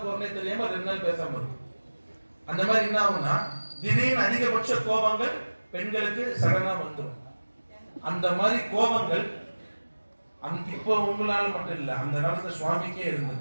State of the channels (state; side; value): inverted; both; correlation -1.00